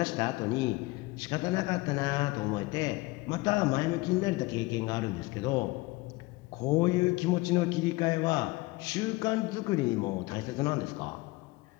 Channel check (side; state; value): right; quieter; 21.9 dB